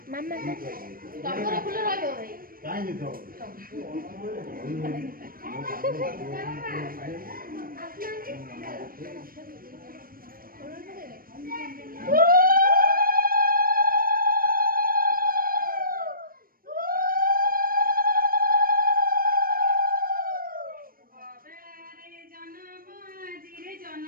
ମାମା ଟଗର ଫୁଲ ରହିବ ଭାଇ କାଇଁ ତ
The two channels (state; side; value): late; left; 0.42 ms